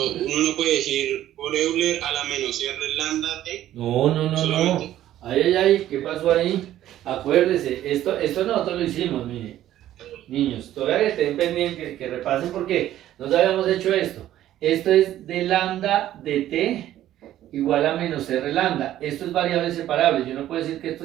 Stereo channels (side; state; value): left; quieter; 12.9 dB